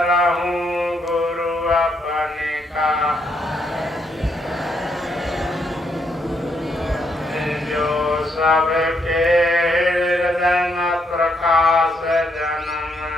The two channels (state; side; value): normal; both; correlation 0.75